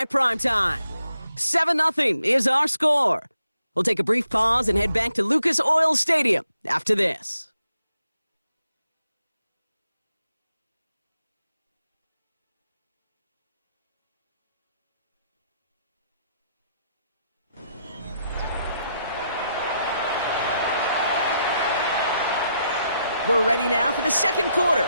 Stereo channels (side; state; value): both; inverted; correlation -0.79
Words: Primetime. 7-0 is our score. We'll take a brief pause and head back to Lucas Oil Stadium after this. We're ready now for the second quarter.